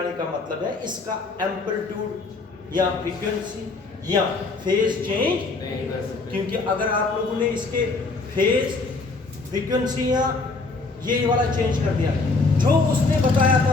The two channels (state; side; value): quieter; right; 3.8 dB